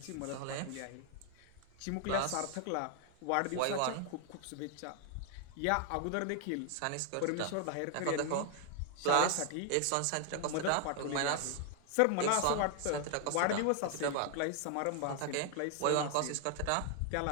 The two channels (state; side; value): different; both; correlation 0.00